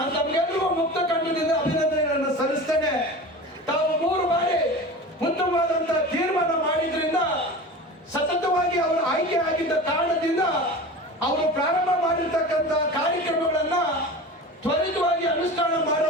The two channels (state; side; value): normal; both; correlation 0.33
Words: ತಮ್ಗೆಲ್ರಿಗೂ ಮುಕ್ತ ಕಂಠದಿಂದ ಅಭಿನಂದನೆಗಳನ್ನು ಸಲ್ಲಿಸ್ತೇನೆ. ತಾವು 3 ಬಾರಿ ಉತ್ತಮವಾದಂತಹ ತೀರ್ಮಾನ ಮಾಡಿದ್ರಿಂದ, ಸತತವಾಗಿ ಅವರು ಆಯ್ಕೆ ಆಗಿದ್ದ ಕಾರಣದಿಂದ ಅವರು ಪ್ರಾರಂಭ ಮಾಡಿರ್ತಕ್ಕಂಥ ಕಾರ್ಯಕ್ರಮಗಳನ್ನ ತ್ವರಿತವಾಗಿ ಅನುಷ್ಠಾನ